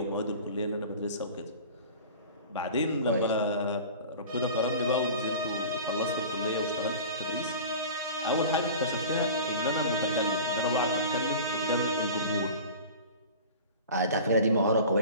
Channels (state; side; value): inverted; both; correlation -0.38